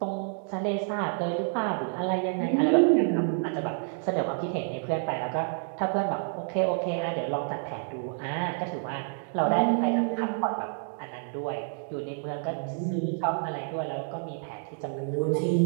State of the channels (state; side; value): silent; left; 59 dB below the other